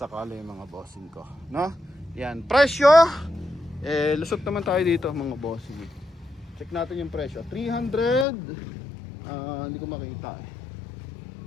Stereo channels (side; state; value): right; drops out; at 8.2 s